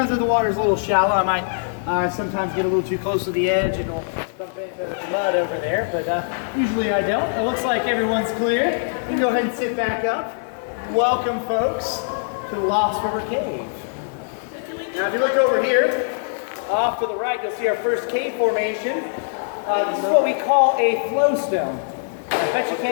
if the water's a little shallow, I might sometimes get a little too close to the edge and it'll bump into the mud over there, but usually I don't. It looks like everyone's clear. You can go ahead and sit back up. Welcome, folks, to the Lost River Cave. Now, if you look over here, off to the right, you'll see our first cave formation. This is what we call a flowstone. I bet you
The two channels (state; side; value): silent; right; 64 dB below the other